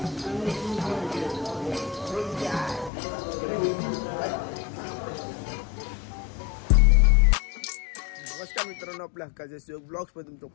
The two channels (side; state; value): right; drops out; at 2.9 s